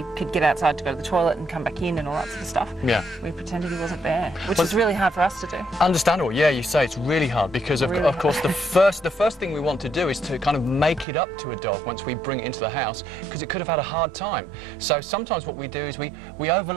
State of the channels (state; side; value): drops out; left; at 11.1 s